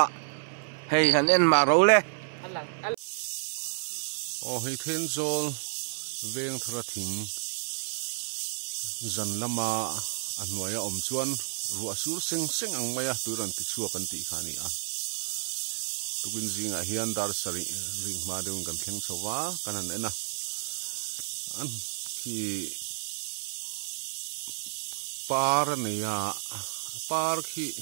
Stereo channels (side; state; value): left; silent; 56 dB below the other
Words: hei han en ma ro le o hei then zol veng thara thing zan lama anwaya om chuan rua sur seng seng ang maya turan ti chuak kan ti khani a tukin zinga hian dar sari ring ma deun kan thleng chowa kanan ena an ki par neya par khi